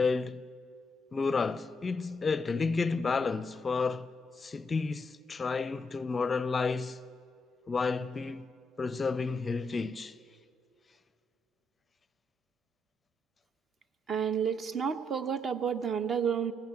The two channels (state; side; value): normal; both; correlation 0.79